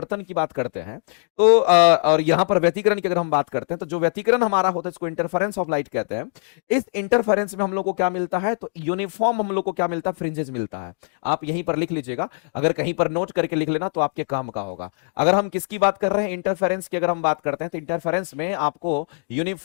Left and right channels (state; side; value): silent; right; digital silence